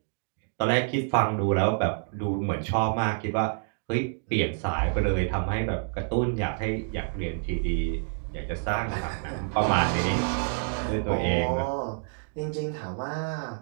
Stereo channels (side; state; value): left; silent; 59 dB below the other